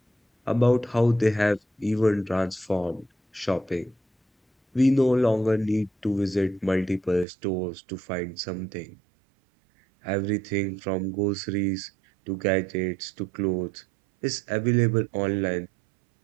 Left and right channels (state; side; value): drops out; left; at 7.2 s